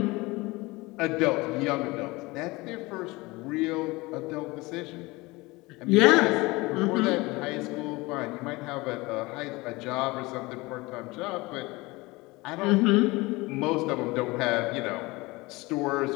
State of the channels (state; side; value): quieter; right; 22.5 dB